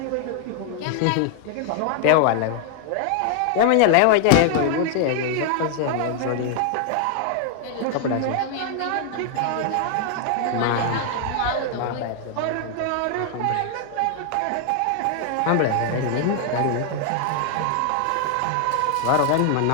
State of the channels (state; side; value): different; both; correlation 0.00